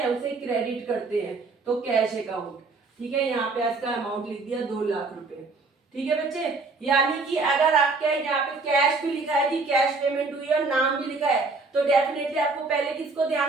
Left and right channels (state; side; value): quieter; left; 3.8 dB